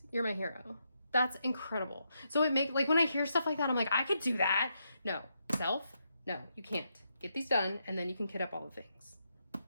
you're my hero. That's incredible. So like when I hear stuff like that, I'm like, I could do that. No, no, you can't. Get these done, and then you can kit up all the things.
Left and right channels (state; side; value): inverted; both; correlation -0.81